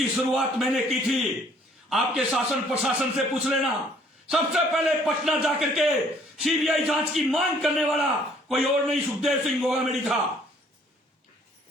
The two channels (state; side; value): normal; both; correlation 0.61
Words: शुरुआत मैंने की थी। आपके शासन प्रशासन से पूछ लेना, सबसे पहले पटना जाकर के सीबीआई जांच की मांग करने वाला कोई और नहीं, सुखदेव सिंह गोगामेडी था।